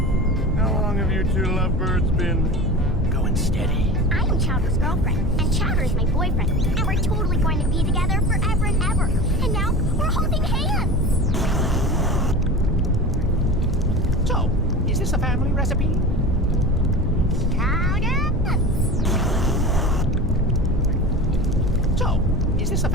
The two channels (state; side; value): normal; both; correlation 0.32